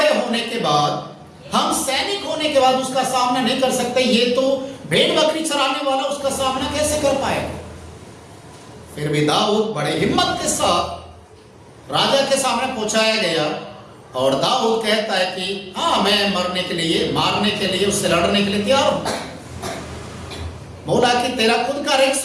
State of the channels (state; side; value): identical; both; correlation 1.00